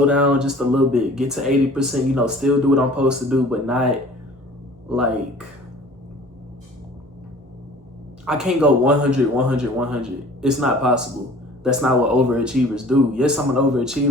down just a little bit, get to 80%, you know, still do what I'm supposed to do, but not like, I can't go 100, 100, 100. It's not possible. That's not what overachievers do. Yes, I'm an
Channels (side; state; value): both; normal; correlation 0.48